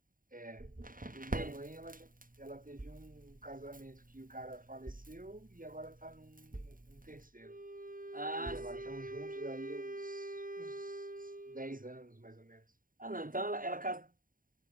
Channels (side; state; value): left; late; 0.40 ms